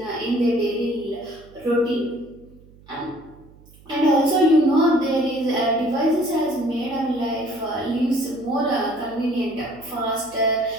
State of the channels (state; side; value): noise; right; hum, 25 dB below the sound